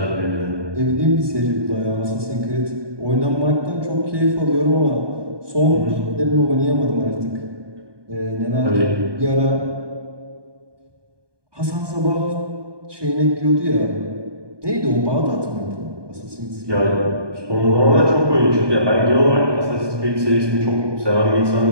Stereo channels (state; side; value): late; left; 1.2 ms